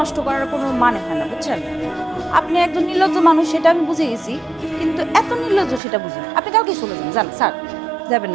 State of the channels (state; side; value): drops out; left; at 5.8 s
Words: করার কোনো মানে হয় না, বুঝছেন? আপনি একজন নির্লজ্জ মানুষ, সেটা আমি বুঝে গেছি, কিন্তু এত নির্লজ্জ সেটা বুঝি না। আপনি কালকে চলে যান। যান স্যার, যাবেন